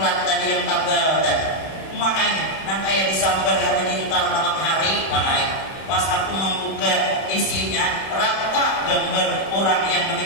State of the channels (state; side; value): late; right; 31 ms